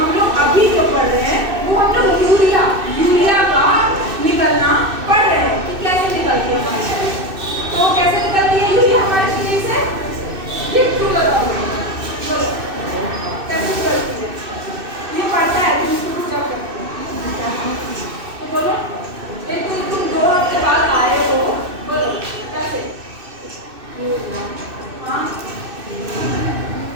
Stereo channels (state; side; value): late; left; 2.6 ms